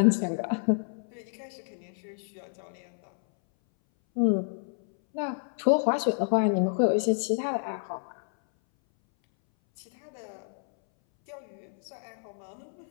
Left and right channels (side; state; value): right; silent; 58 dB below the other